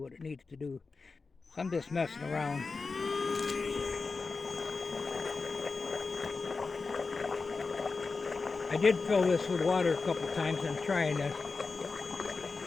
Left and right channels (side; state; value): right; quieter; 4.3 dB